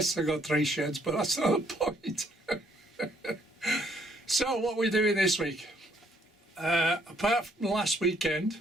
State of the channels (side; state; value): both; normal; correlation 0.68